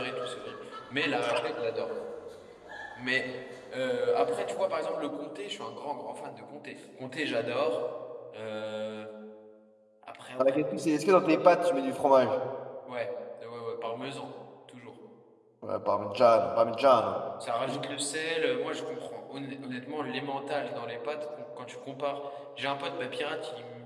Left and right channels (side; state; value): both; identical; correlation 1.00